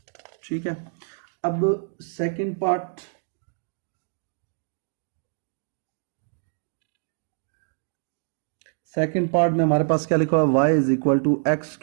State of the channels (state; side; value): silent; left; digital silence